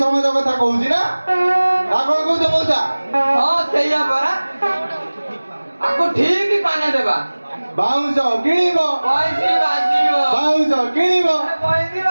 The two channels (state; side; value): inverted; both; correlation -1.00